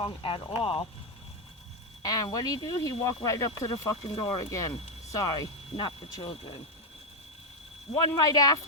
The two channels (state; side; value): normal; both; correlation 0.03